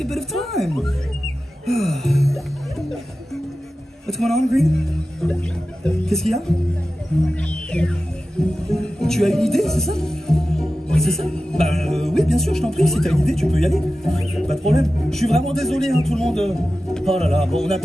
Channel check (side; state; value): both; normal; correlation 0.94